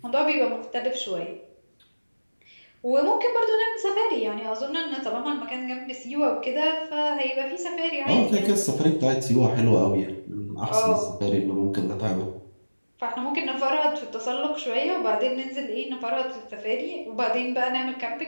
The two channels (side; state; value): both; inverted; correlation -1.00